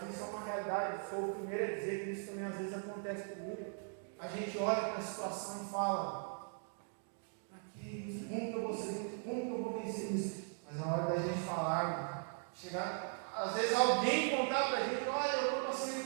isso é uma realidade. Sou o primeiro a dizer que isso também às vezes acontece comigo. A gente olha para a situação e fala, como que eu vou ser, como que eu vou vencer isso? Mas na hora da gente falar, chegar, às vezes alguém contar para a gente, olha, eu estou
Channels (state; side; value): silent; left; 52 dB below the other